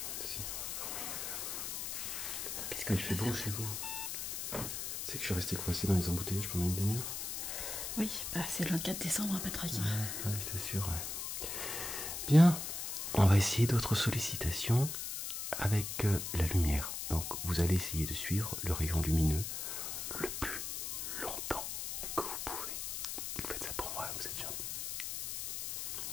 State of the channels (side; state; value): left; noise; hiss, 4 dB below the sound